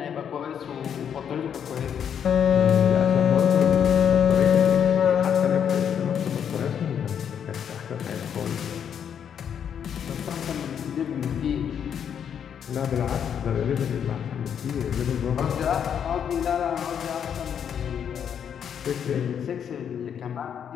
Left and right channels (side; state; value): right; quieter; 8.3 dB